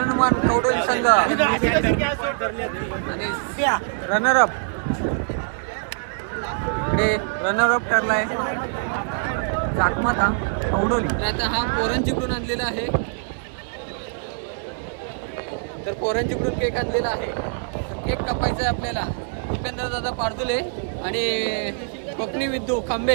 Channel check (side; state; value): left; silent; digital silence